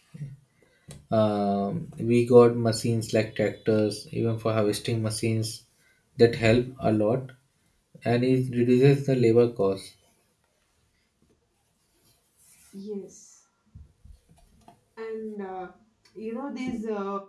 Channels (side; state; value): both; identical; correlation 1.00